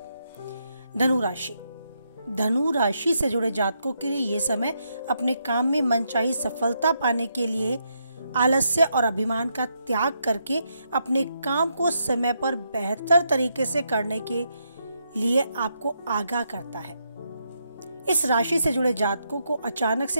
धनु राशि से जुड़े जातकों के लिए ये समय अपने काम में मनचाही सफलता पाने के लिए आलस्य और अभिमान का त्याग करके अपने काम को समय पर बेहतर तरीके से करने के लिए आपको आगाह करता है। इस राशि से जुड़े जातकों को अचानक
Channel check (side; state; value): both; inverted; correlation -0.79